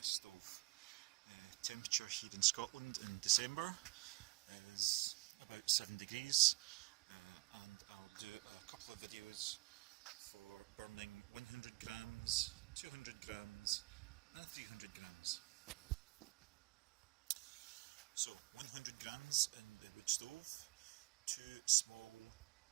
stove. Temperature here in Scotland in December is about 7 degrees, and I'll do a couple of videos for burning 100 grams, 200 grams and 300 grams. So 100 grams in the wood stove, 2 small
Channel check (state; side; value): quieter; left; 24.1 dB